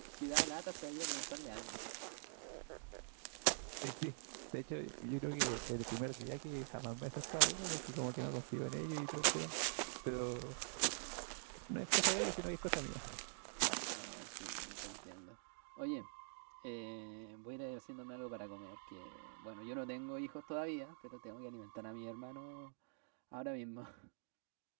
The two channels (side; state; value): left; silent; digital silence